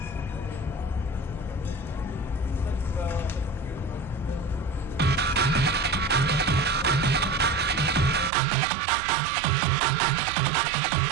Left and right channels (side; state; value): left; drops out; at 8.3 s